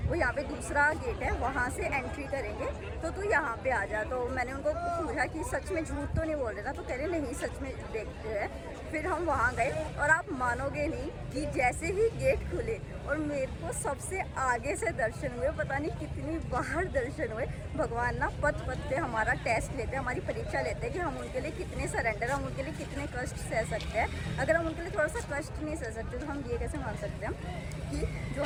वो यहाँ पे दूसरा गेट है वहाँ से एंट्री करेंगे तो तू यहाँ पे आ जा। तो मैंने उनको पूछा कि सच में झूठ तो नहीं बोल रहे ना, तो कह रहे नहीं सच में देखते हैं। फिर हम वहाँ गए और आप मानोगे नहीं कि जैसे ही गेट खुले और मेरे को सबसे आगे से दर्शन हुए, पता नहीं कितनी बार दर्शन हुए। भगवान ना पथ पथ पे हमारा टेस्ट लेते हैं, हमारी परीक्षा लेते हैं कि हम उनके लिए कितने सरेंडर, हम उनके लिए कितने कष्ट सह सकते हैं। अगर हम उनके लिए थोड़ा सा कष्ट नहीं सह सकते तो हम ये कैसे मान सकते हैं कि जो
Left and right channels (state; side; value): identical; both; correlation 1.00